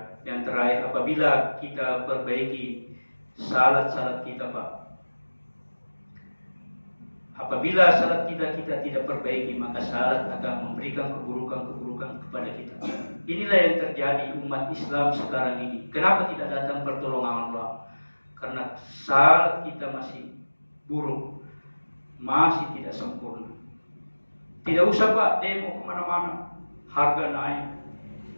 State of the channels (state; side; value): inverted; both; correlation -1.00